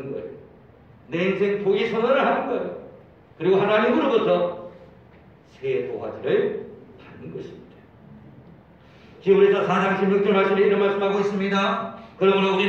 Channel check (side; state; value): both; identical; correlation 1.00